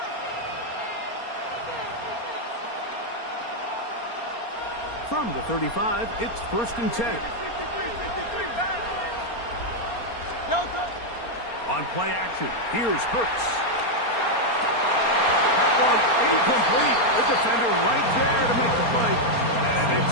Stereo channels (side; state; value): right; late; 4.3 ms